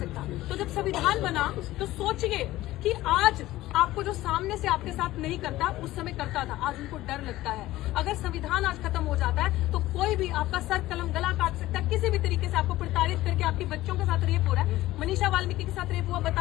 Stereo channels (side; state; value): right; quieter; 16.4 dB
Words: तो जब संविधान बना तो सोचिए कि आज आपको जो सामने से आपके साथ नहीं करता, उस समय करता था, आज उनको डर लगता है। अगर संविधान आज खत्म हो जाता है तो कोई भी आपका सर कलम गला काट सकता है, किसी भी तरीके से आपको प्रताड़ित करके। आपकी बच्चों के साथ रेप हो रहा है, मनीषा वाल्मीकि के साथ रेप हुआ,